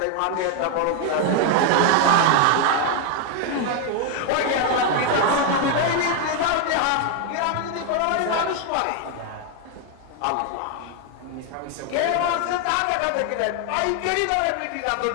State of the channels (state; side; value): different; both; correlation 0.01